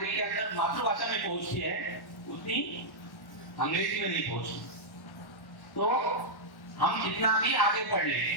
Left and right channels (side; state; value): right; late; 1.1 ms